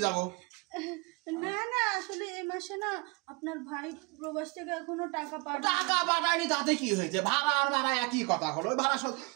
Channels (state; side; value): quieter; left; 29.2 dB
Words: যাবো? না না, আসলে এই মাসে না আপনার ভাই প্রবাস থেকে এখনো টাকা টাকা পাঠায়নি, তাতে কি হয়েছে? ভাড়া আর ভাড়া একই কথা হলো।